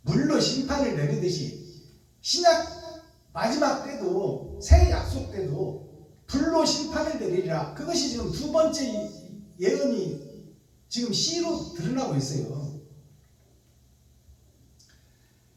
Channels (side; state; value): both; identical; correlation 1.00